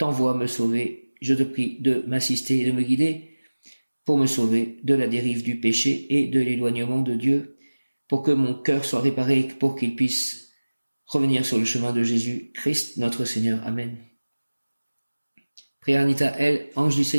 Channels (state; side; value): inverted; both; correlation -1.00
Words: me sauver, je te prie de m'assister et de me guider pour me sauver de la dérive du péché et de l'éloignement de Dieu, pour que mon cœur soit réparé et pour qu'il puisse revenir sur le chemin de Jésus-Christ, notre Seigneur. Amen. Prière Anita L, ange du